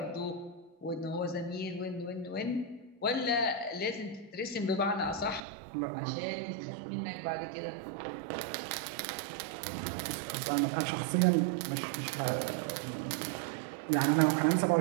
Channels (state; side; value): drops out; left; at 5.4 s